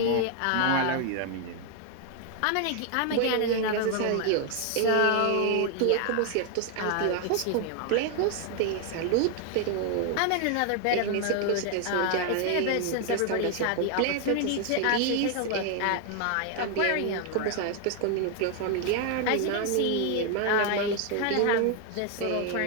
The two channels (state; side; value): different; both; correlation 0.00